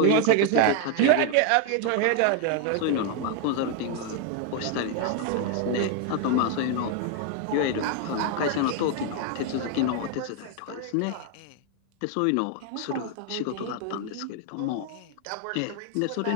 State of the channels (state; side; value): different; both; correlation 0.01